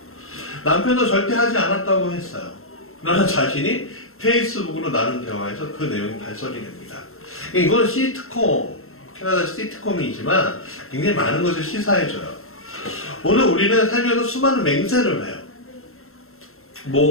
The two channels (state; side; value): late; right; 0.62 ms